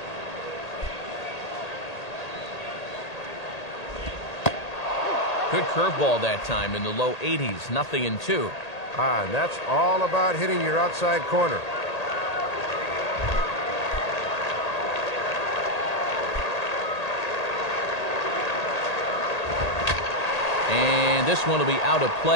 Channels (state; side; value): late; right; 1.8 ms